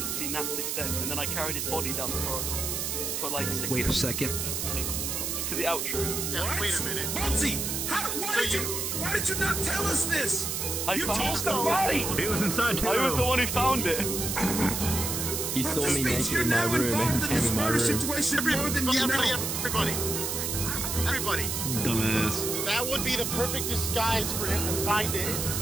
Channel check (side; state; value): right; noise; hiss, 2 dB below the sound